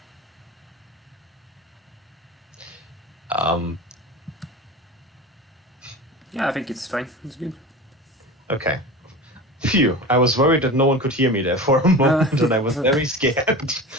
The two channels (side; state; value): both; normal; correlation 0.31